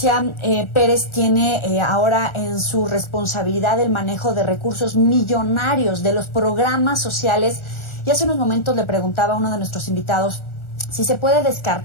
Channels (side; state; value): right; late; 1.4 ms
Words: Pérez tiene ahora en su responsabilidad el manejo de recursos millonarios de los programas sociales, y hace unos momentos le preguntaba a uno de nuestros invitados si se puede